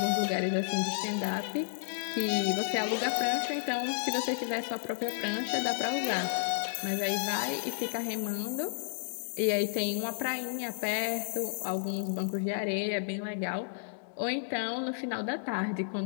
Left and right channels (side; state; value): right; silent; digital silence